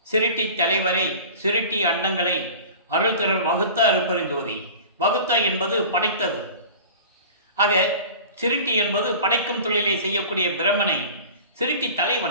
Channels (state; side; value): inverted; both; correlation -0.39